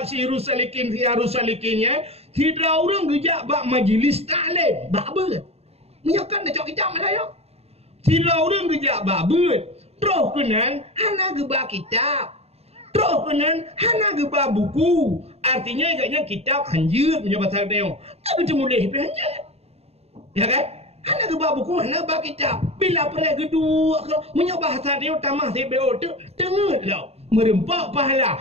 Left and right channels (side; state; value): left; late; 0.30 ms